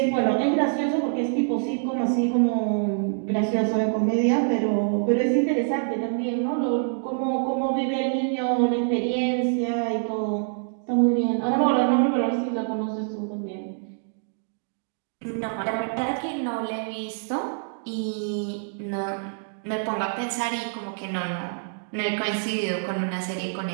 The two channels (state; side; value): silent; left; digital silence